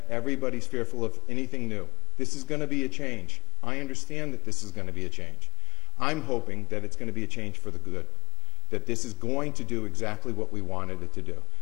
Everybody's fearful of anything new. This is going to be a change. I understand that this is going to be a change. I'm hoping that it's going to be a change for the good, that this is going to do exactly what we wanted it to do,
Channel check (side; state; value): right; quieter; 22.4 dB